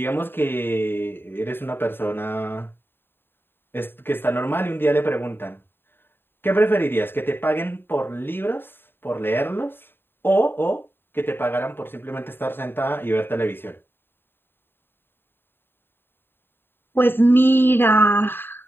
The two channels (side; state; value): right; late; 0.10 ms